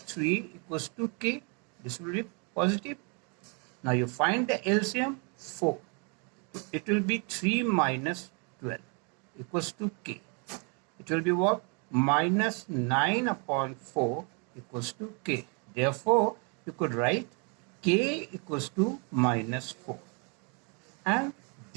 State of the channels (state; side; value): quieter; left; 35.3 dB